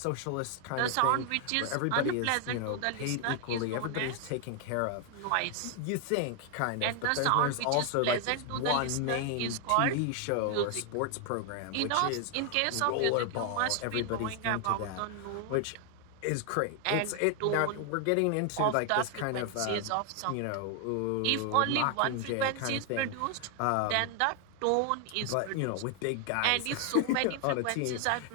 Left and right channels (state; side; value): different; both; correlation 0.00